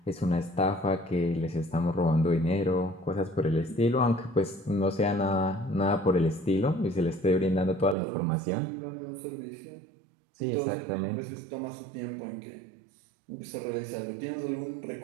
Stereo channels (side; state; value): left; drops out; at 8.0 s